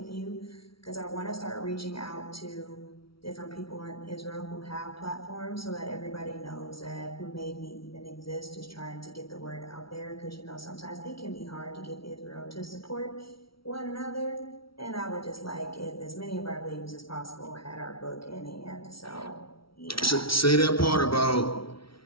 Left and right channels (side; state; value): right; late; 0.75 ms